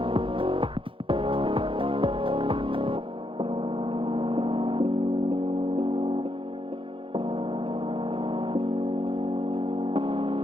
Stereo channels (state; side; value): late; left; 0.25 ms